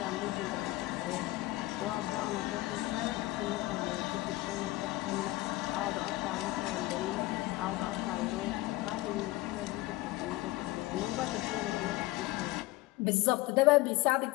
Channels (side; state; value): right; quieter; 19.0 dB